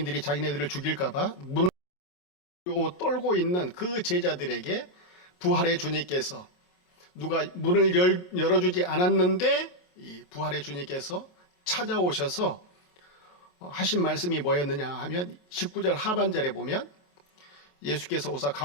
자기네들을 죽일까봐 문을 떨고 있는 그 제자들에게 부활의 주님께서, 누가 문을 열어주지 않았는데 이 부활의 주님께서 찾아오셔서 하신 말씀이 뭐였느냐 하면 19절 하반절에 보면 예수께서 오사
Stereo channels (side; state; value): right; late; 28 ms